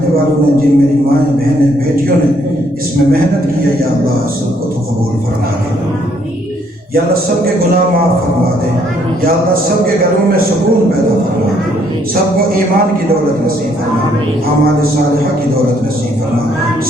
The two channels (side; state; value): both; normal; correlation 0.68